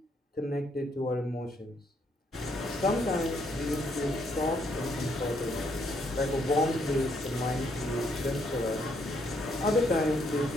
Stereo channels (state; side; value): normal; both; correlation 0.72